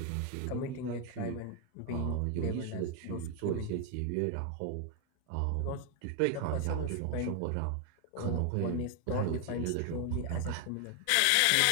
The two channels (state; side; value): different; both; correlation 0.01